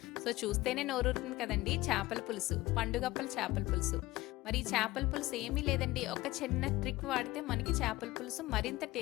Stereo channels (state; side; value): quieter; right; 18.7 dB